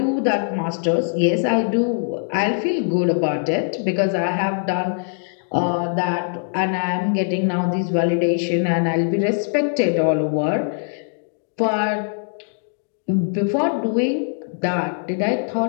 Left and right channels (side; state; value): right; silent; digital silence